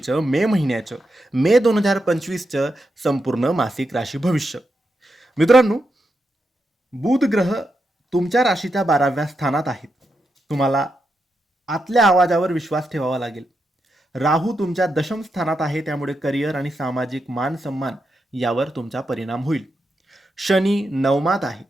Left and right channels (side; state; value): both; normal; correlation 0.85